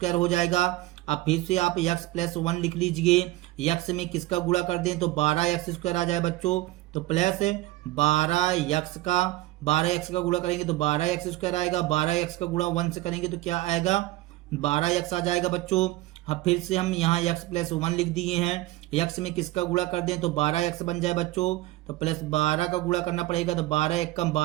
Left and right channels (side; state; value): left; quieter; 17.7 dB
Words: हो जाएगा। अब फिर से आप x +1 लिख लीजिए। x में किसका गुणा कर दें तो 12x स्क्वायर आ जाए बच्चों। तो प्लस 12x का गुणा करेंगे तो 12x स्क्वायर आएगा। 12x का गुणा 1 से करेंगे तो क्या आएगा, 12x आ जाएगा बच्चों। अब फिर से हम यहाँ x +1 लिख दिए हैं। x में किसका गुणा कर दें तो 12x बन जाए बच्चों। तो +12 का गुणा करना पड़ेगा तो 12 1 कम